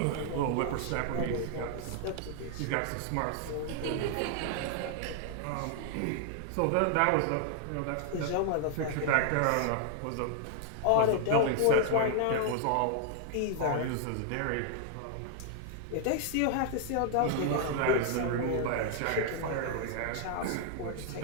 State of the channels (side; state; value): both; different; correlation 0.00